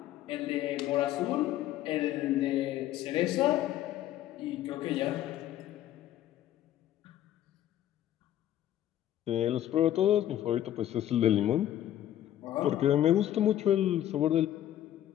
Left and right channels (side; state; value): right; quieter; 12.3 dB